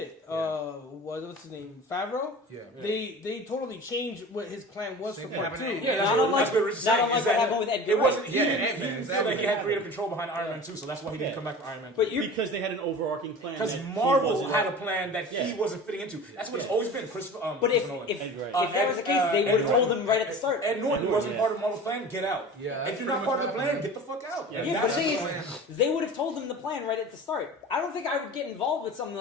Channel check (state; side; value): normal; both; correlation 0.37